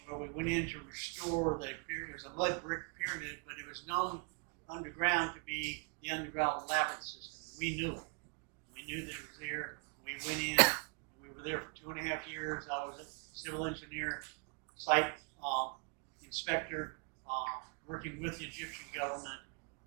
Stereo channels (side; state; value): left; quieter; 33.6 dB